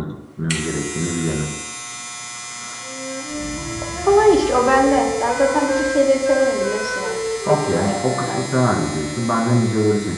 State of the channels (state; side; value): identical; both; correlation 1.00